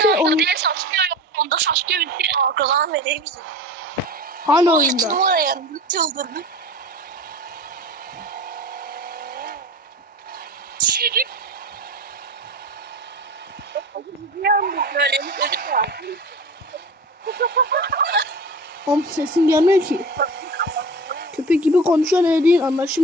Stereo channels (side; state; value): both; normal; correlation 0.34